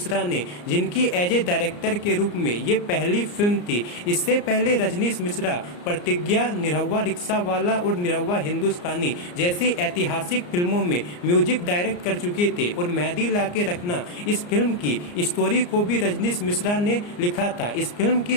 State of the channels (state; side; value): late; right; 34 ms